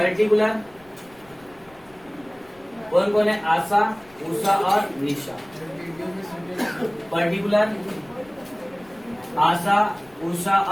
कौन कौन है, आशा उषा और निशा। पर्टिकुलर आशा उषा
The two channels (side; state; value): left; noise; rumble, 28 dB below the sound